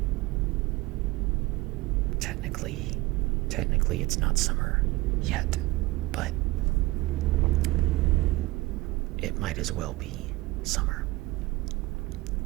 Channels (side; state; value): left; quieter; 20.3 dB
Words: technically it's not summer yet, but it might as well be summer.